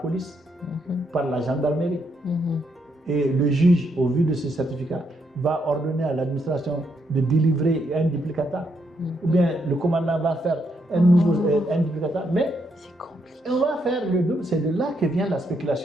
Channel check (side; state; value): both; normal; correlation 0.77